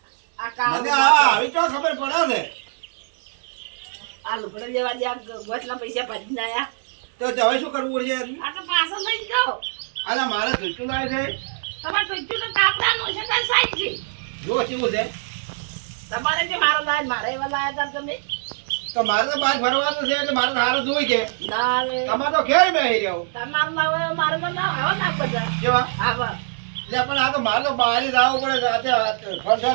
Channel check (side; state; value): left; silent; 64 dB below the other